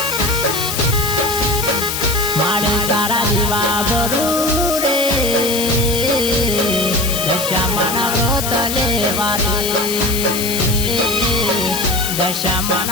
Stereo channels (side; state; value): left; noise; hiss, 3 dB below the sound